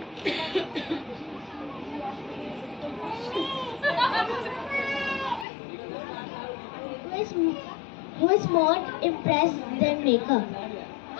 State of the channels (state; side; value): drops out; right; at 5.5 s